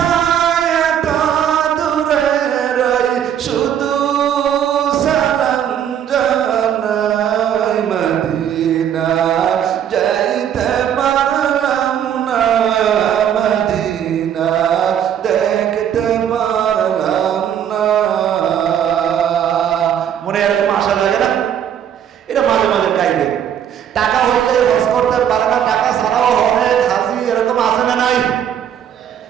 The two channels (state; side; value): quieter; left; 9.4 dB